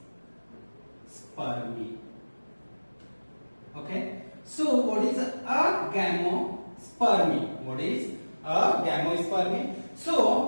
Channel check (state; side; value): inverted; both; correlation -1.00